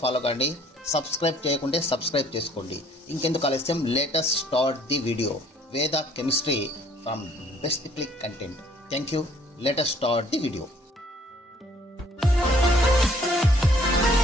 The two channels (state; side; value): normal; both; correlation 0.60